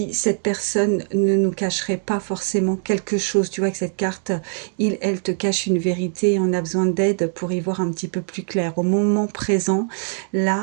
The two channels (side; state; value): left; silent; 58 dB below the other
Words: cette personne ne nous cacherait pas forcément quelque chose. Tu vois que cette carte, elle te cache une vérité et on a besoin d'aide pour y voir un petit peu plus clair. Au moment présent,